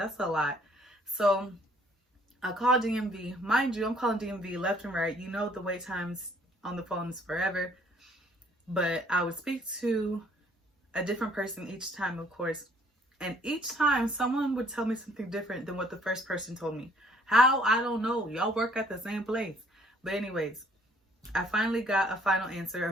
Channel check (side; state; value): both; normal; correlation 0.61